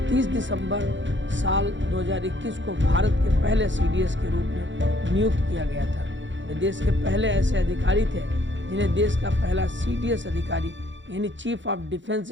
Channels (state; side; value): late; left; 0.54 ms